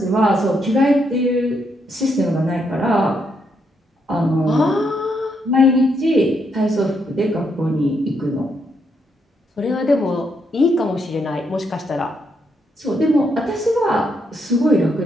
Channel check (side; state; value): both; normal; correlation 0.77